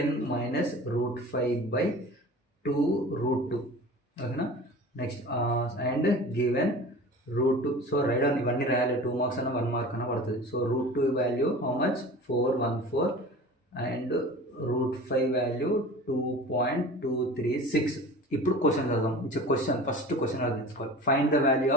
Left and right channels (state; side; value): normal; both; correlation 0.38